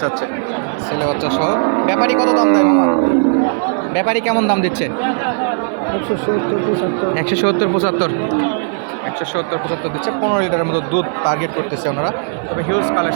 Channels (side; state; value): left; silent; 55 dB below the other